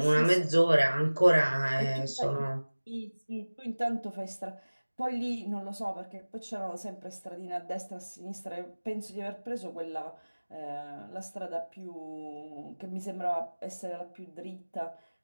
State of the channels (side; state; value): both; inverted; correlation -1.00